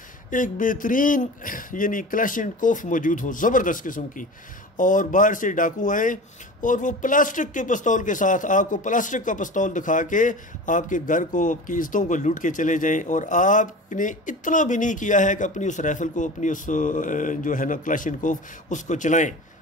एक बेहतरीन यानी क्लैशनकोफ मौजूद हो ज़बरदस्त किस्म की, और बाहर से डाकू आए और वो प्लास्टिक के पिस्तौल के साथ आपको प्लास्टिक का पिस्तौल दिखा के आपके घर को, आपकी इज्जतों को लूट के चले जाएं, और आपने इतना भी नहीं किया है कि अपनी उस राइफल को, अपनी उस जो है ना क्लैशनकोफ, उसको चलाएं।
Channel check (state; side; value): normal; both; correlation 0.34